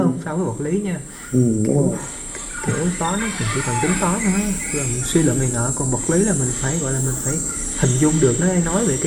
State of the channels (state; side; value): identical; both; correlation 1.00